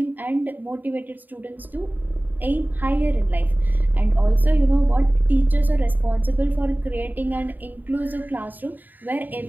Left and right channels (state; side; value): late; left; 0.087 ms